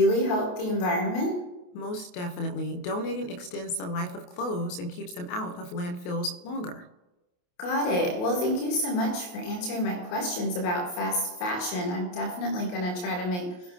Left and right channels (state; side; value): late; right; 28 ms